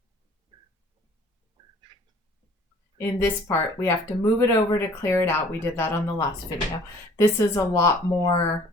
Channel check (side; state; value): both; normal; correlation 0.53